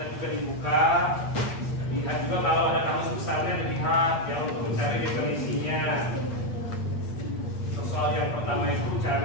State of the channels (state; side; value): late; right; 8.5 ms